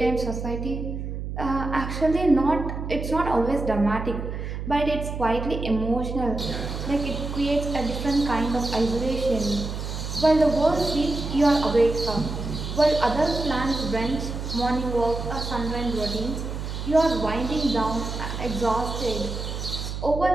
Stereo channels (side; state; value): right; noise; hum, 6 dB below the sound